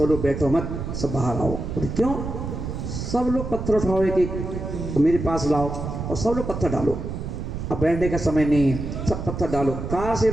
लोग बैठो मत, सब बाहर आओ। बोले क्यों? सब लोग पत्थर उठाओ एक एक, मेरे पास लाओ और सब लोग पत्थर डालो, अब बैठने का समय नहीं है, सब पत्थर डालो, कार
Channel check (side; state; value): right; noise; rumble, 5 dB below the sound